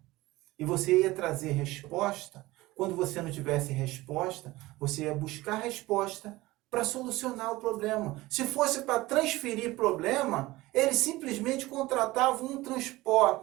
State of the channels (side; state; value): left; quieter; 19.2 dB